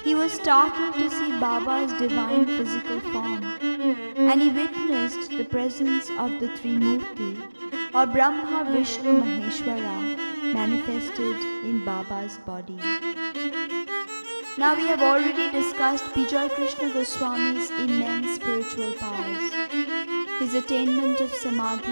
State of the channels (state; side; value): inverted; both; correlation -1.00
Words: He was startled to see Baba's divine physical form, and he witnessed the presence of the Trimurti, or Brahma, Vishnu, Maheshwara, manifested in Baba's body. Now we have already discussed Bijay Krishna Goswami's immense spiritual powers, his attainment of